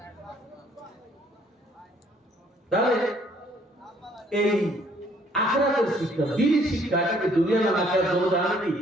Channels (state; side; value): normal; both; correlation 0.63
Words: তাহলে এই আখিরাতের শিক্ষা, দ্বীনি শিক্ষা, এটাকে দুনিয়া না আখিরাত দুটো জানেনই